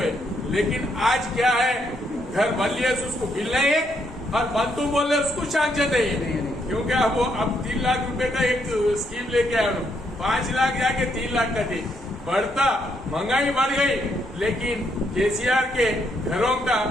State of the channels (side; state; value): both; normal; correlation 0.75